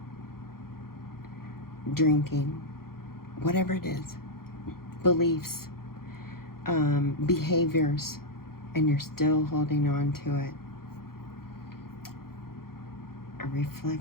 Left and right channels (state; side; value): late; right; 0.93 ms